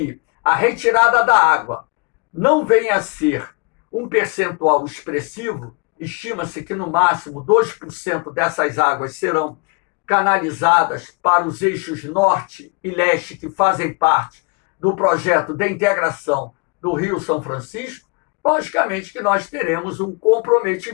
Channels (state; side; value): quieter; right; 31.1 dB